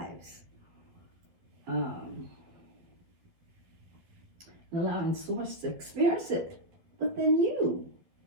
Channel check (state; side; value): late; left; 12 ms